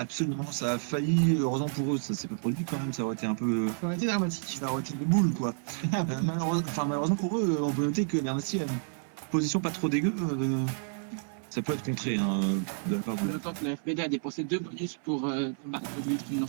ça a failli. Heureusement pour eux, ça s'est pas produit quand même. Ça aurait été un peu. Ça aurait été dramatique. Ça aurait été des boules quoi. Malheureusement pour eux, on peut noter que Bernassi a une position pas trop dégueu. Ça peut être contré, hein, de la part de... Le temps que la FBD a dépensé 2 bonus pour battre les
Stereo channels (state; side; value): silent; left; 58 dB below the other